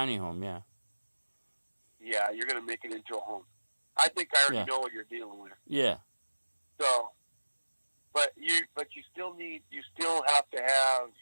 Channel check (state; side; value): inverted; both; correlation -1.00